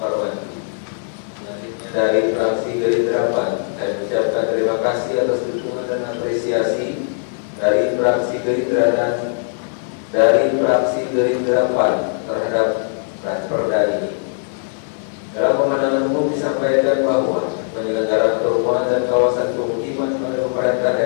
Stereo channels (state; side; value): silent; right; digital silence